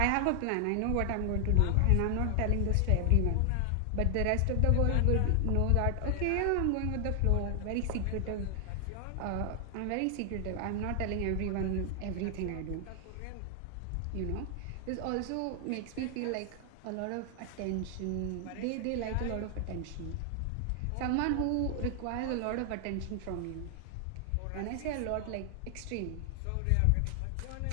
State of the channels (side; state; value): both; different; correlation 0.00